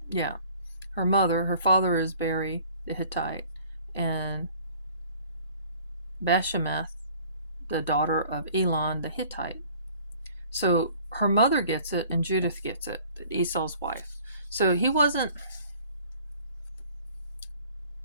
her father is Beri the Hittite, and Bashemath, the daughter of Elon the Hittite. So her mother gets it and Judith gets it, Esau's wife. So he wasn't...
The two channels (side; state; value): both; inverted; correlation -0.52